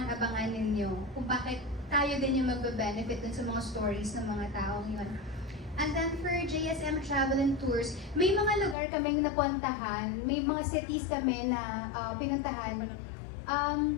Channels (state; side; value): drops out; right; at 8.8 s